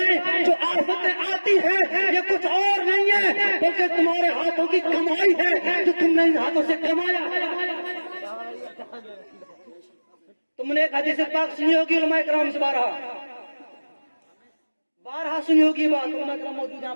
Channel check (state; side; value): inverted; both; correlation -1.00